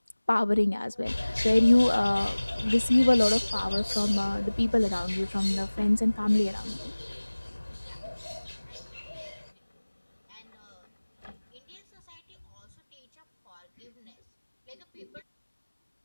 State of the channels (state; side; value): inverted; both; correlation -1.00